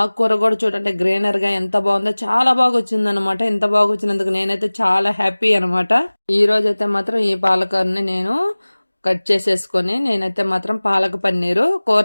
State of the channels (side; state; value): both; inverted; correlation -1.00